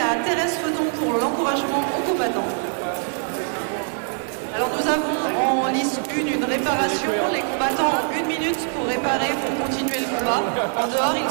Thérèse Feuton pour l'encouragement aux combattants. Alors nous avons en lice 1 une réparation. Les combattants ont 1 minute pour réparer, pour continuer le combat. En dehors, ils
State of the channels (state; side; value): silent; left; 57 dB below the other